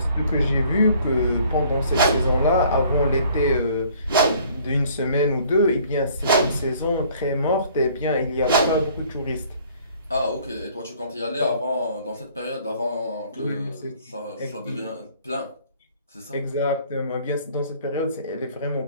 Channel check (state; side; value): inverted; both; correlation -0.56